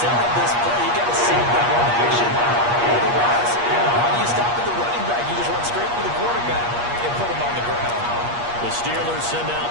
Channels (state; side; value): late; left; 8.4 ms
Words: this play. You've got to sell the run action. Otherwise, why do you stop at the running back? You just run straight for the quarterback and put him on the ground. The Steelers send